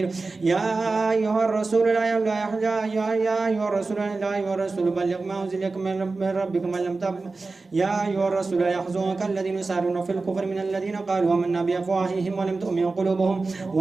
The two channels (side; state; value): left; quieter; 3.8 dB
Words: يا أيها الرسول لا بلغ ما أنزل إليك من ربك من لم تب يا أيها الرسول لا يحزنك الذين يسارعون في الكفر من الذين قالوا آمنا بأفواههم ولم تؤمن قلوبهم